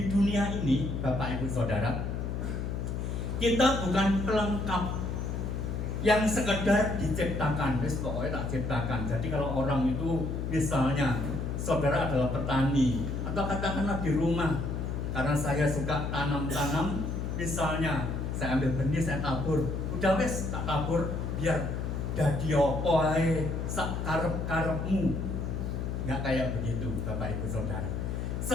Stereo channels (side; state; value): left; noise; hum, 2 dB below the sound